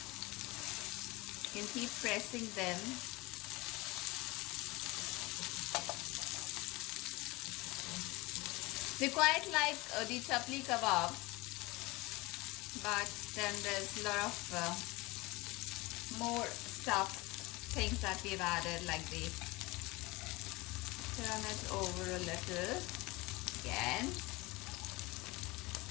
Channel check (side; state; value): right; quieter; 22.8 dB